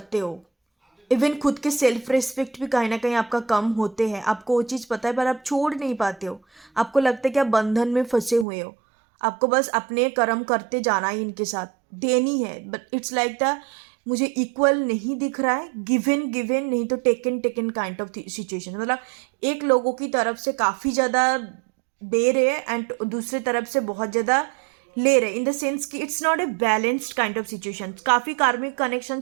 हो, इवन खुद के सेल्फ रिस्पेक्ट भी कहीं ना कहीं आपका कम होते हैं, आपको वो चीज़ पता है पर आप छोड़ नहीं पाते हो। आपको लगता है कि आप बंधन में फंसे हुए हो, आपको बस अपने कर्म करते जाना ही इनके साथ देनी है। बट इट्स लाइक द, मुझे इक्वल नहीं दिख रहा है, गिवन नहीं तो टेकन काइंड ऑफ सिचुएशन, मतलब एक लोगों की तरफ से काफ़ी ज़्यादा दे रहे हैं एंड दूसरे तरफ से बहुत ज़्यादा ले रहे, इन द सेंस कि it's not a balanced kind of situation. काफ़ी कार्मिक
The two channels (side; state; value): left; drops out; at 8.5 s